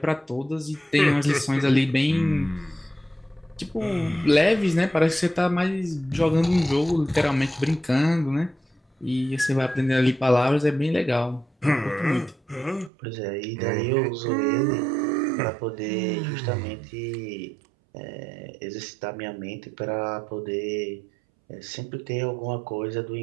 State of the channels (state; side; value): drops out; left; at 12.9 s